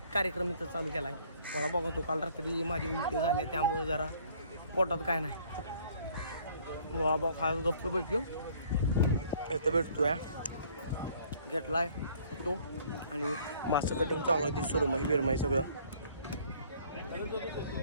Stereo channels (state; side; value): inverted; both; correlation -0.58